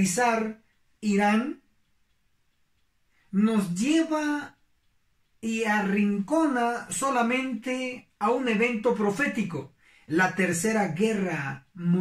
Irán, nos lleva y arrincona solamente a un evento profético, la Tercera Guerra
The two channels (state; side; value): identical; both; correlation 1.00